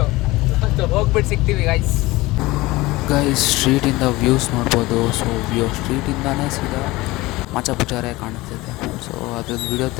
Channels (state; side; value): quieter; right; 20.2 dB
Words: ಹೋಗ್ಬಿಟ್ಟು ಸಿಗ್ತೀವಿ ಗೈಸ್. ಸ್ಟ್ರೀಟಿಂದ ವ್ಯೂಸ್ ನೋಡ್ಬೋದು. ಸೊ ಸ್ಟ್ರೀಟಿಂದಾನೇ ಸೀದಾ ಮಾಚಾಪುಚಾರೆ ಕಾಣಿಸ್ತಿದೆ. ಸೊ ಅದ್ರದ್ದು ವಿಡಿಯೋ